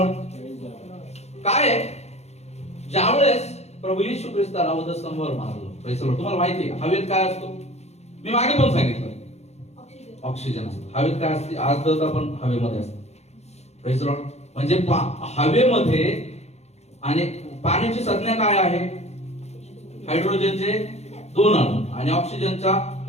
काय आहे? ज्यावेळेस प्रभू येशू ख्रिस्ताला वधस्तंभावर मारलं, प्रेज द लॉर्ड, तुम्हाला माहिती आहे हवेत काय असतो? मी मागे पण सांगितलं, ऑक्सिजन असतो. हवेत काय असते? आर्द्रता पण हवेमध्ये असते. Praise the Lord. म्हणजे हवेमध्ये आणि पाण्याची संज्ञा काय आहे? हायड्रोजनचे 2 अणू आणि ऑक्सिजनचा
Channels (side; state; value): right; late; 0.31 ms